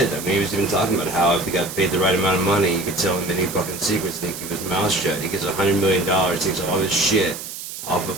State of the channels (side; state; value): right; noise; hiss, 10 dB below the sound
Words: I mean, he was even talking about how if he got paid the right amount of money, you could tell him any fucking secrets and he'd keep his mouth shut. He gets $100 million, takes all this shit off of